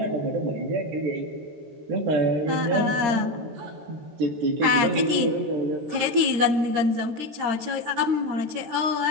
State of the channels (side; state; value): left; late; 13 ms